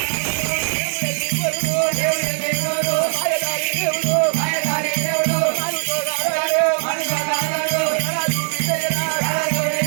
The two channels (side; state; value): left; silent; digital silence